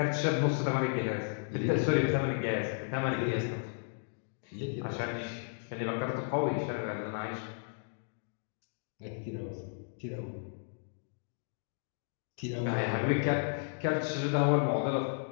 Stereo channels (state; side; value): silent; right; digital silence